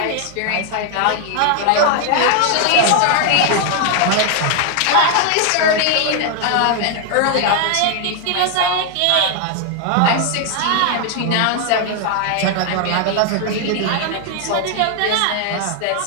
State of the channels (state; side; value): different; both; correlation 0.00